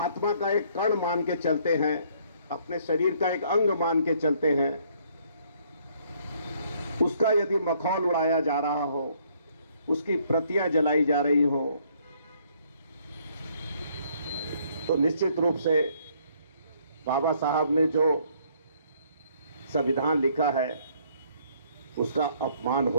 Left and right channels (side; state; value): both; inverted; correlation -0.65